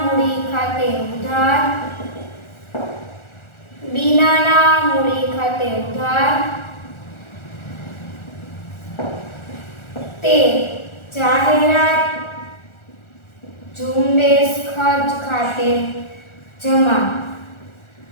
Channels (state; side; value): late; right; 1.4 ms